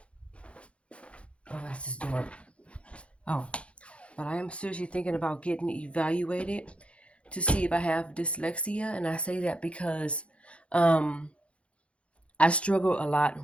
Oh, that's his door. Oh, but I am seriously thinking about getting evaluated to see if I have dyslexia. And I say that because I struggle a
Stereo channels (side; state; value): right; late; 0.061 ms